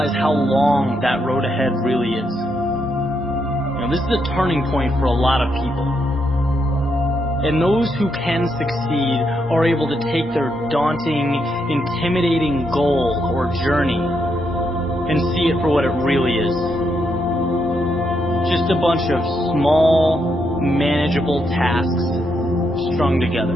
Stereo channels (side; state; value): both; normal; correlation 0.79